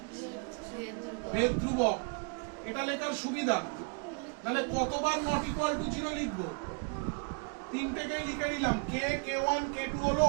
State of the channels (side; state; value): left; quieter; 38.2 dB